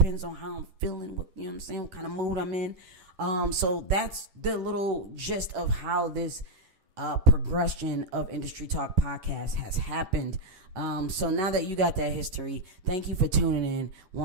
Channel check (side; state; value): left; late; 10 ms